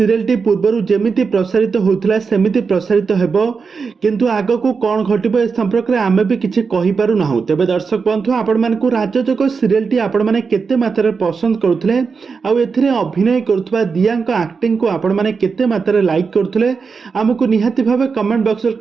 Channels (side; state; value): left; quieter; 5.2 dB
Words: ପୂର୍ବରୁ ଯେମିତି ପ୍ରସାରିତ ହେଉଥିଲା ସେମିତି ପ୍ରସାରିତ ହେବ, କିନ୍ତୁ ଆଗକୁ କ'ଣ ଘଟିବ ଏ ସମ୍ପର୍କରେ ଆମେ ବି କିଛି କହିପାରୁନାହୁଁ। ତେବେ ଦର୍ଶକ ବନ୍ଧୁ, ଆପଣମାନଙ୍କୁ ରାଜଯୋଗ ସିରିଏଲଟି ଆପଣମାନେ କେତେ ମାତ୍ରାରେ ପସନ୍ଦ କରୁଥିଲେ, ଆଉ ଏଥିରେ ଅଭିନୟ କରୁଥିବା ଦିୟାଙ୍କ ଆକ୍ଟିଂକୁ ଆପଣମାନେ କେତେ ମାତ୍ରାରେ ଲାଇକ୍ କରୁଥିଲେ, ଆମକୁ ନିହାତି ଭାବେ କମେଣ୍ଟ ବକ୍ସରେ